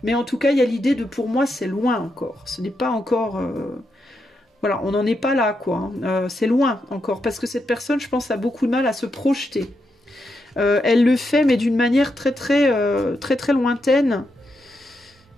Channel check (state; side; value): normal; both; correlation 0.83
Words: Mais en tout cas, il y a l'idée de, pour moi, c'est loin encore. Ce n'est pas encore... Voilà, on n'en est pas là, quoi. C'est loin encore. Parce que cette personne, je pense, a beaucoup de mal à se projeter. Elle le fait, mais d'une manière très lointaine.